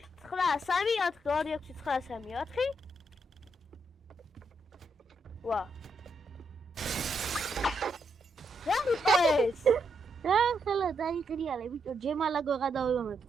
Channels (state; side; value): normal; both; correlation 0.79